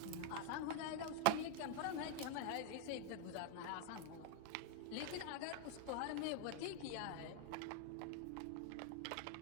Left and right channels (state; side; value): different; both; correlation 0.00